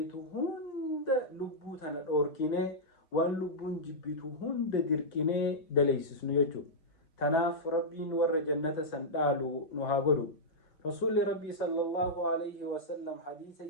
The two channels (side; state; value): right; late; 5.5 ms